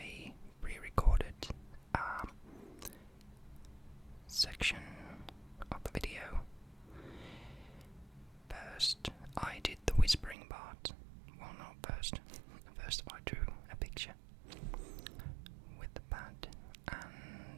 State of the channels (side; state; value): left; drops out; at 10.4 s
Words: pre-recorded a section of the video. First, I did the whispering part. Well, not first. First, I drew a picture with the pad,